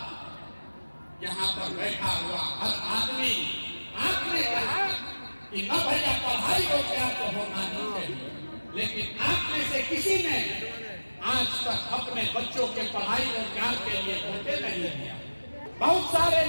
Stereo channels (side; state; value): both; inverted; correlation -1.00